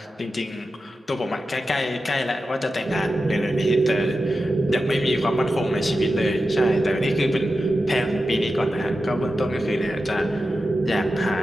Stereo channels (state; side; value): normal; both; correlation 0.92